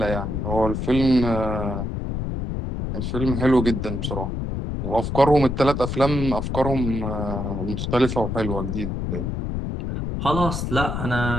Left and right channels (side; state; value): left; noise; rumble, 3 dB below the sound